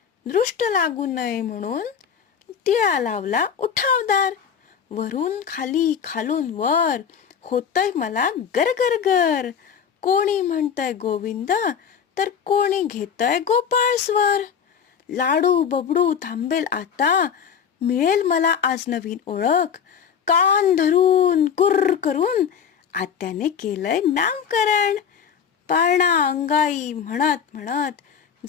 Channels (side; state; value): right; quieter; 7.5 dB